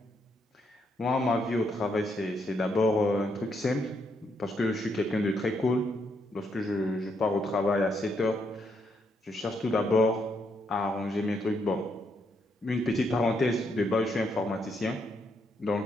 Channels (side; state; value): both; normal; correlation 0.77